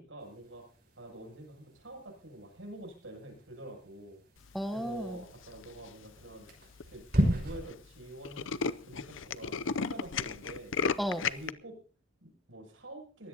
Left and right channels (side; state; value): both; normal; correlation 0.49